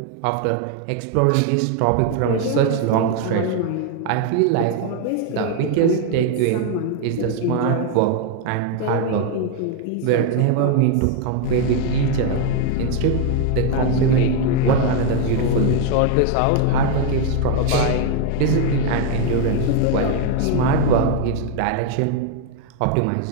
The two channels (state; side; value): different; both; correlation 0.01